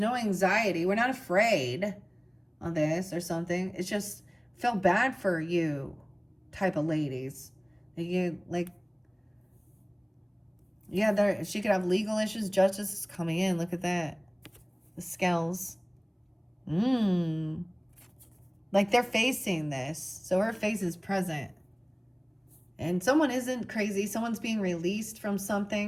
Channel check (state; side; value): identical; both; correlation 1.00